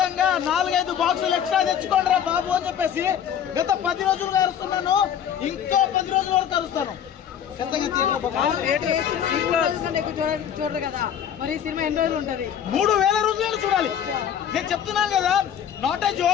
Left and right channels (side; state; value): right; quieter; 9.0 dB